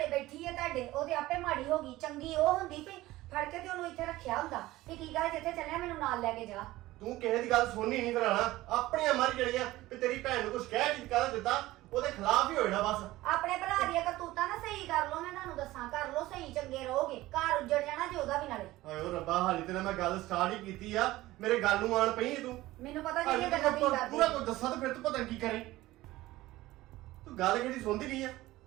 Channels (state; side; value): quieter; left; 17.4 dB